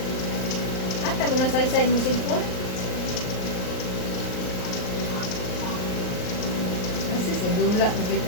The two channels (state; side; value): late; right; 38 ms